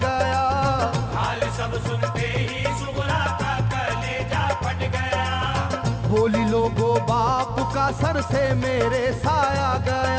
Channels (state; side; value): identical; both; correlation 1.00